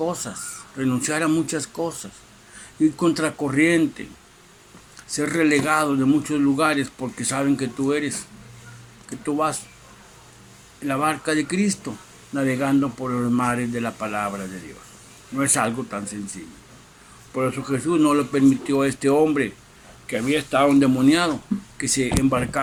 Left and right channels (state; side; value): identical; both; correlation 1.00